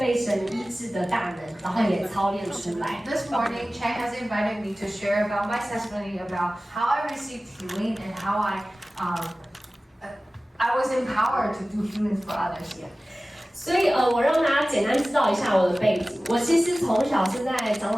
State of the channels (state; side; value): normal; both; correlation 0.97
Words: 神医治的大能，然后也操练出来。This morning, Chen has invited me to share about my testimony about how I received healing and how I was empowered to do healings for others. 所以我让大家简单知道一下我的背景。我其实从小是在